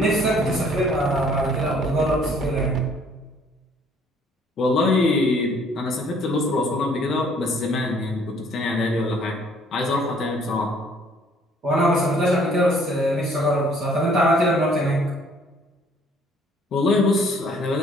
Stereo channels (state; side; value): normal; both; correlation 0.60